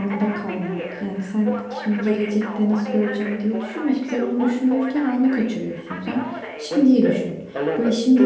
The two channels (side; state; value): both; identical; correlation 1.00